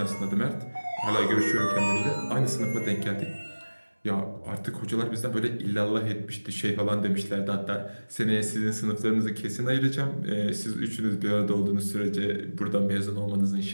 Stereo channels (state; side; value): inverted; both; correlation -1.00